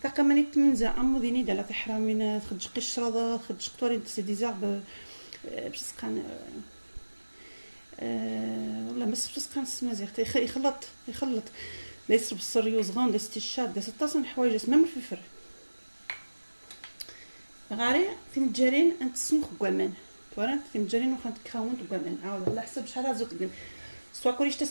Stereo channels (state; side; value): inverted; both; correlation -1.00